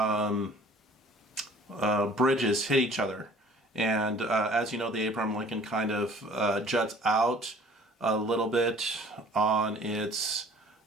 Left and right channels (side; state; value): both; normal; correlation 0.51